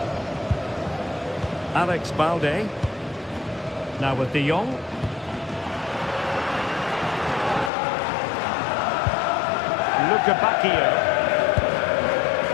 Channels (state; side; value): drops out; right; at 7.7 s